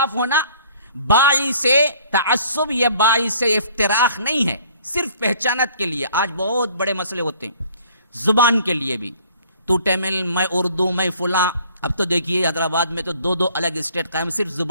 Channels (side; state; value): both; inverted; correlation -0.56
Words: ہونا باعث تعصب یا باعث افتراق نہیں ہے، صرف پہچانت کے لیے. آج بہت بڑے مسئلے ہوتے ہیں زبان کے لیے بھی، تو تمل، میں اردو، میں فلاں. اب تو دیکھیے حیدرآباد میں تو دو الگ اسٹیٹ قائم صرف